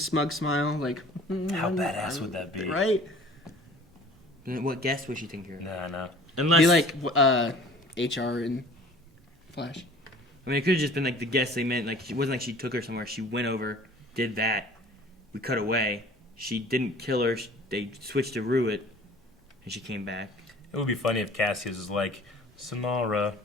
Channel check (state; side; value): normal; both; correlation 0.48